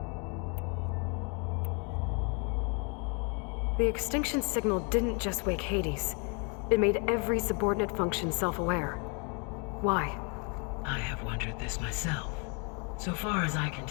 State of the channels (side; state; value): right; quieter; 35.0 dB